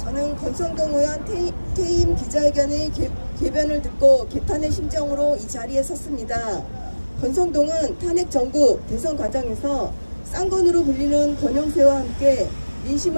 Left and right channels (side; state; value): both; inverted; correlation -1.00